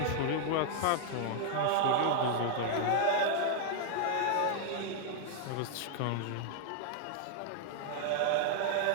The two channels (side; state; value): both; different; correlation 0.00